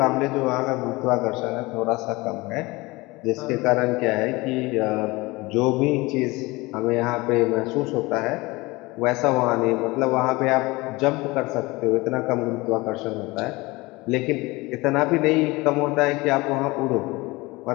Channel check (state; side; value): quieter; right; 22.4 dB